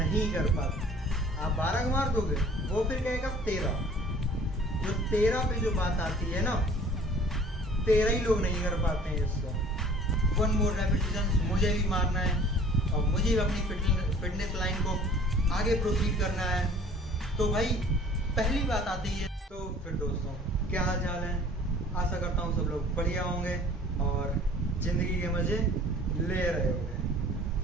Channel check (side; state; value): both; normal; correlation 0.50